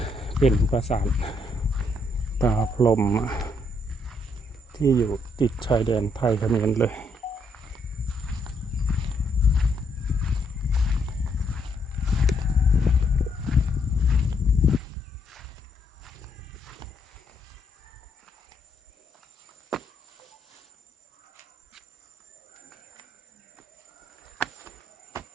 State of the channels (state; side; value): normal; both; correlation 0.74